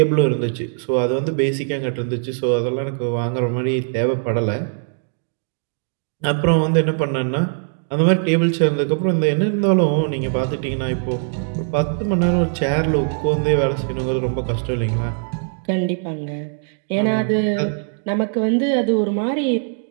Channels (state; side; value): silent; left; digital silence